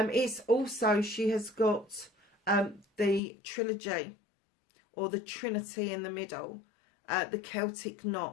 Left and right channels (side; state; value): right; drops out; at 3.2 s